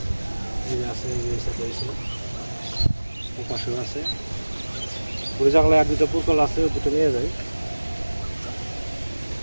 এই আছে, এই সাথে এসে পাশেও আছে, ওই জানলায় আর দুটো পুরকল আছে, ওই দুটো নিয়ে যাই।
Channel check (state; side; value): inverted; both; correlation -1.00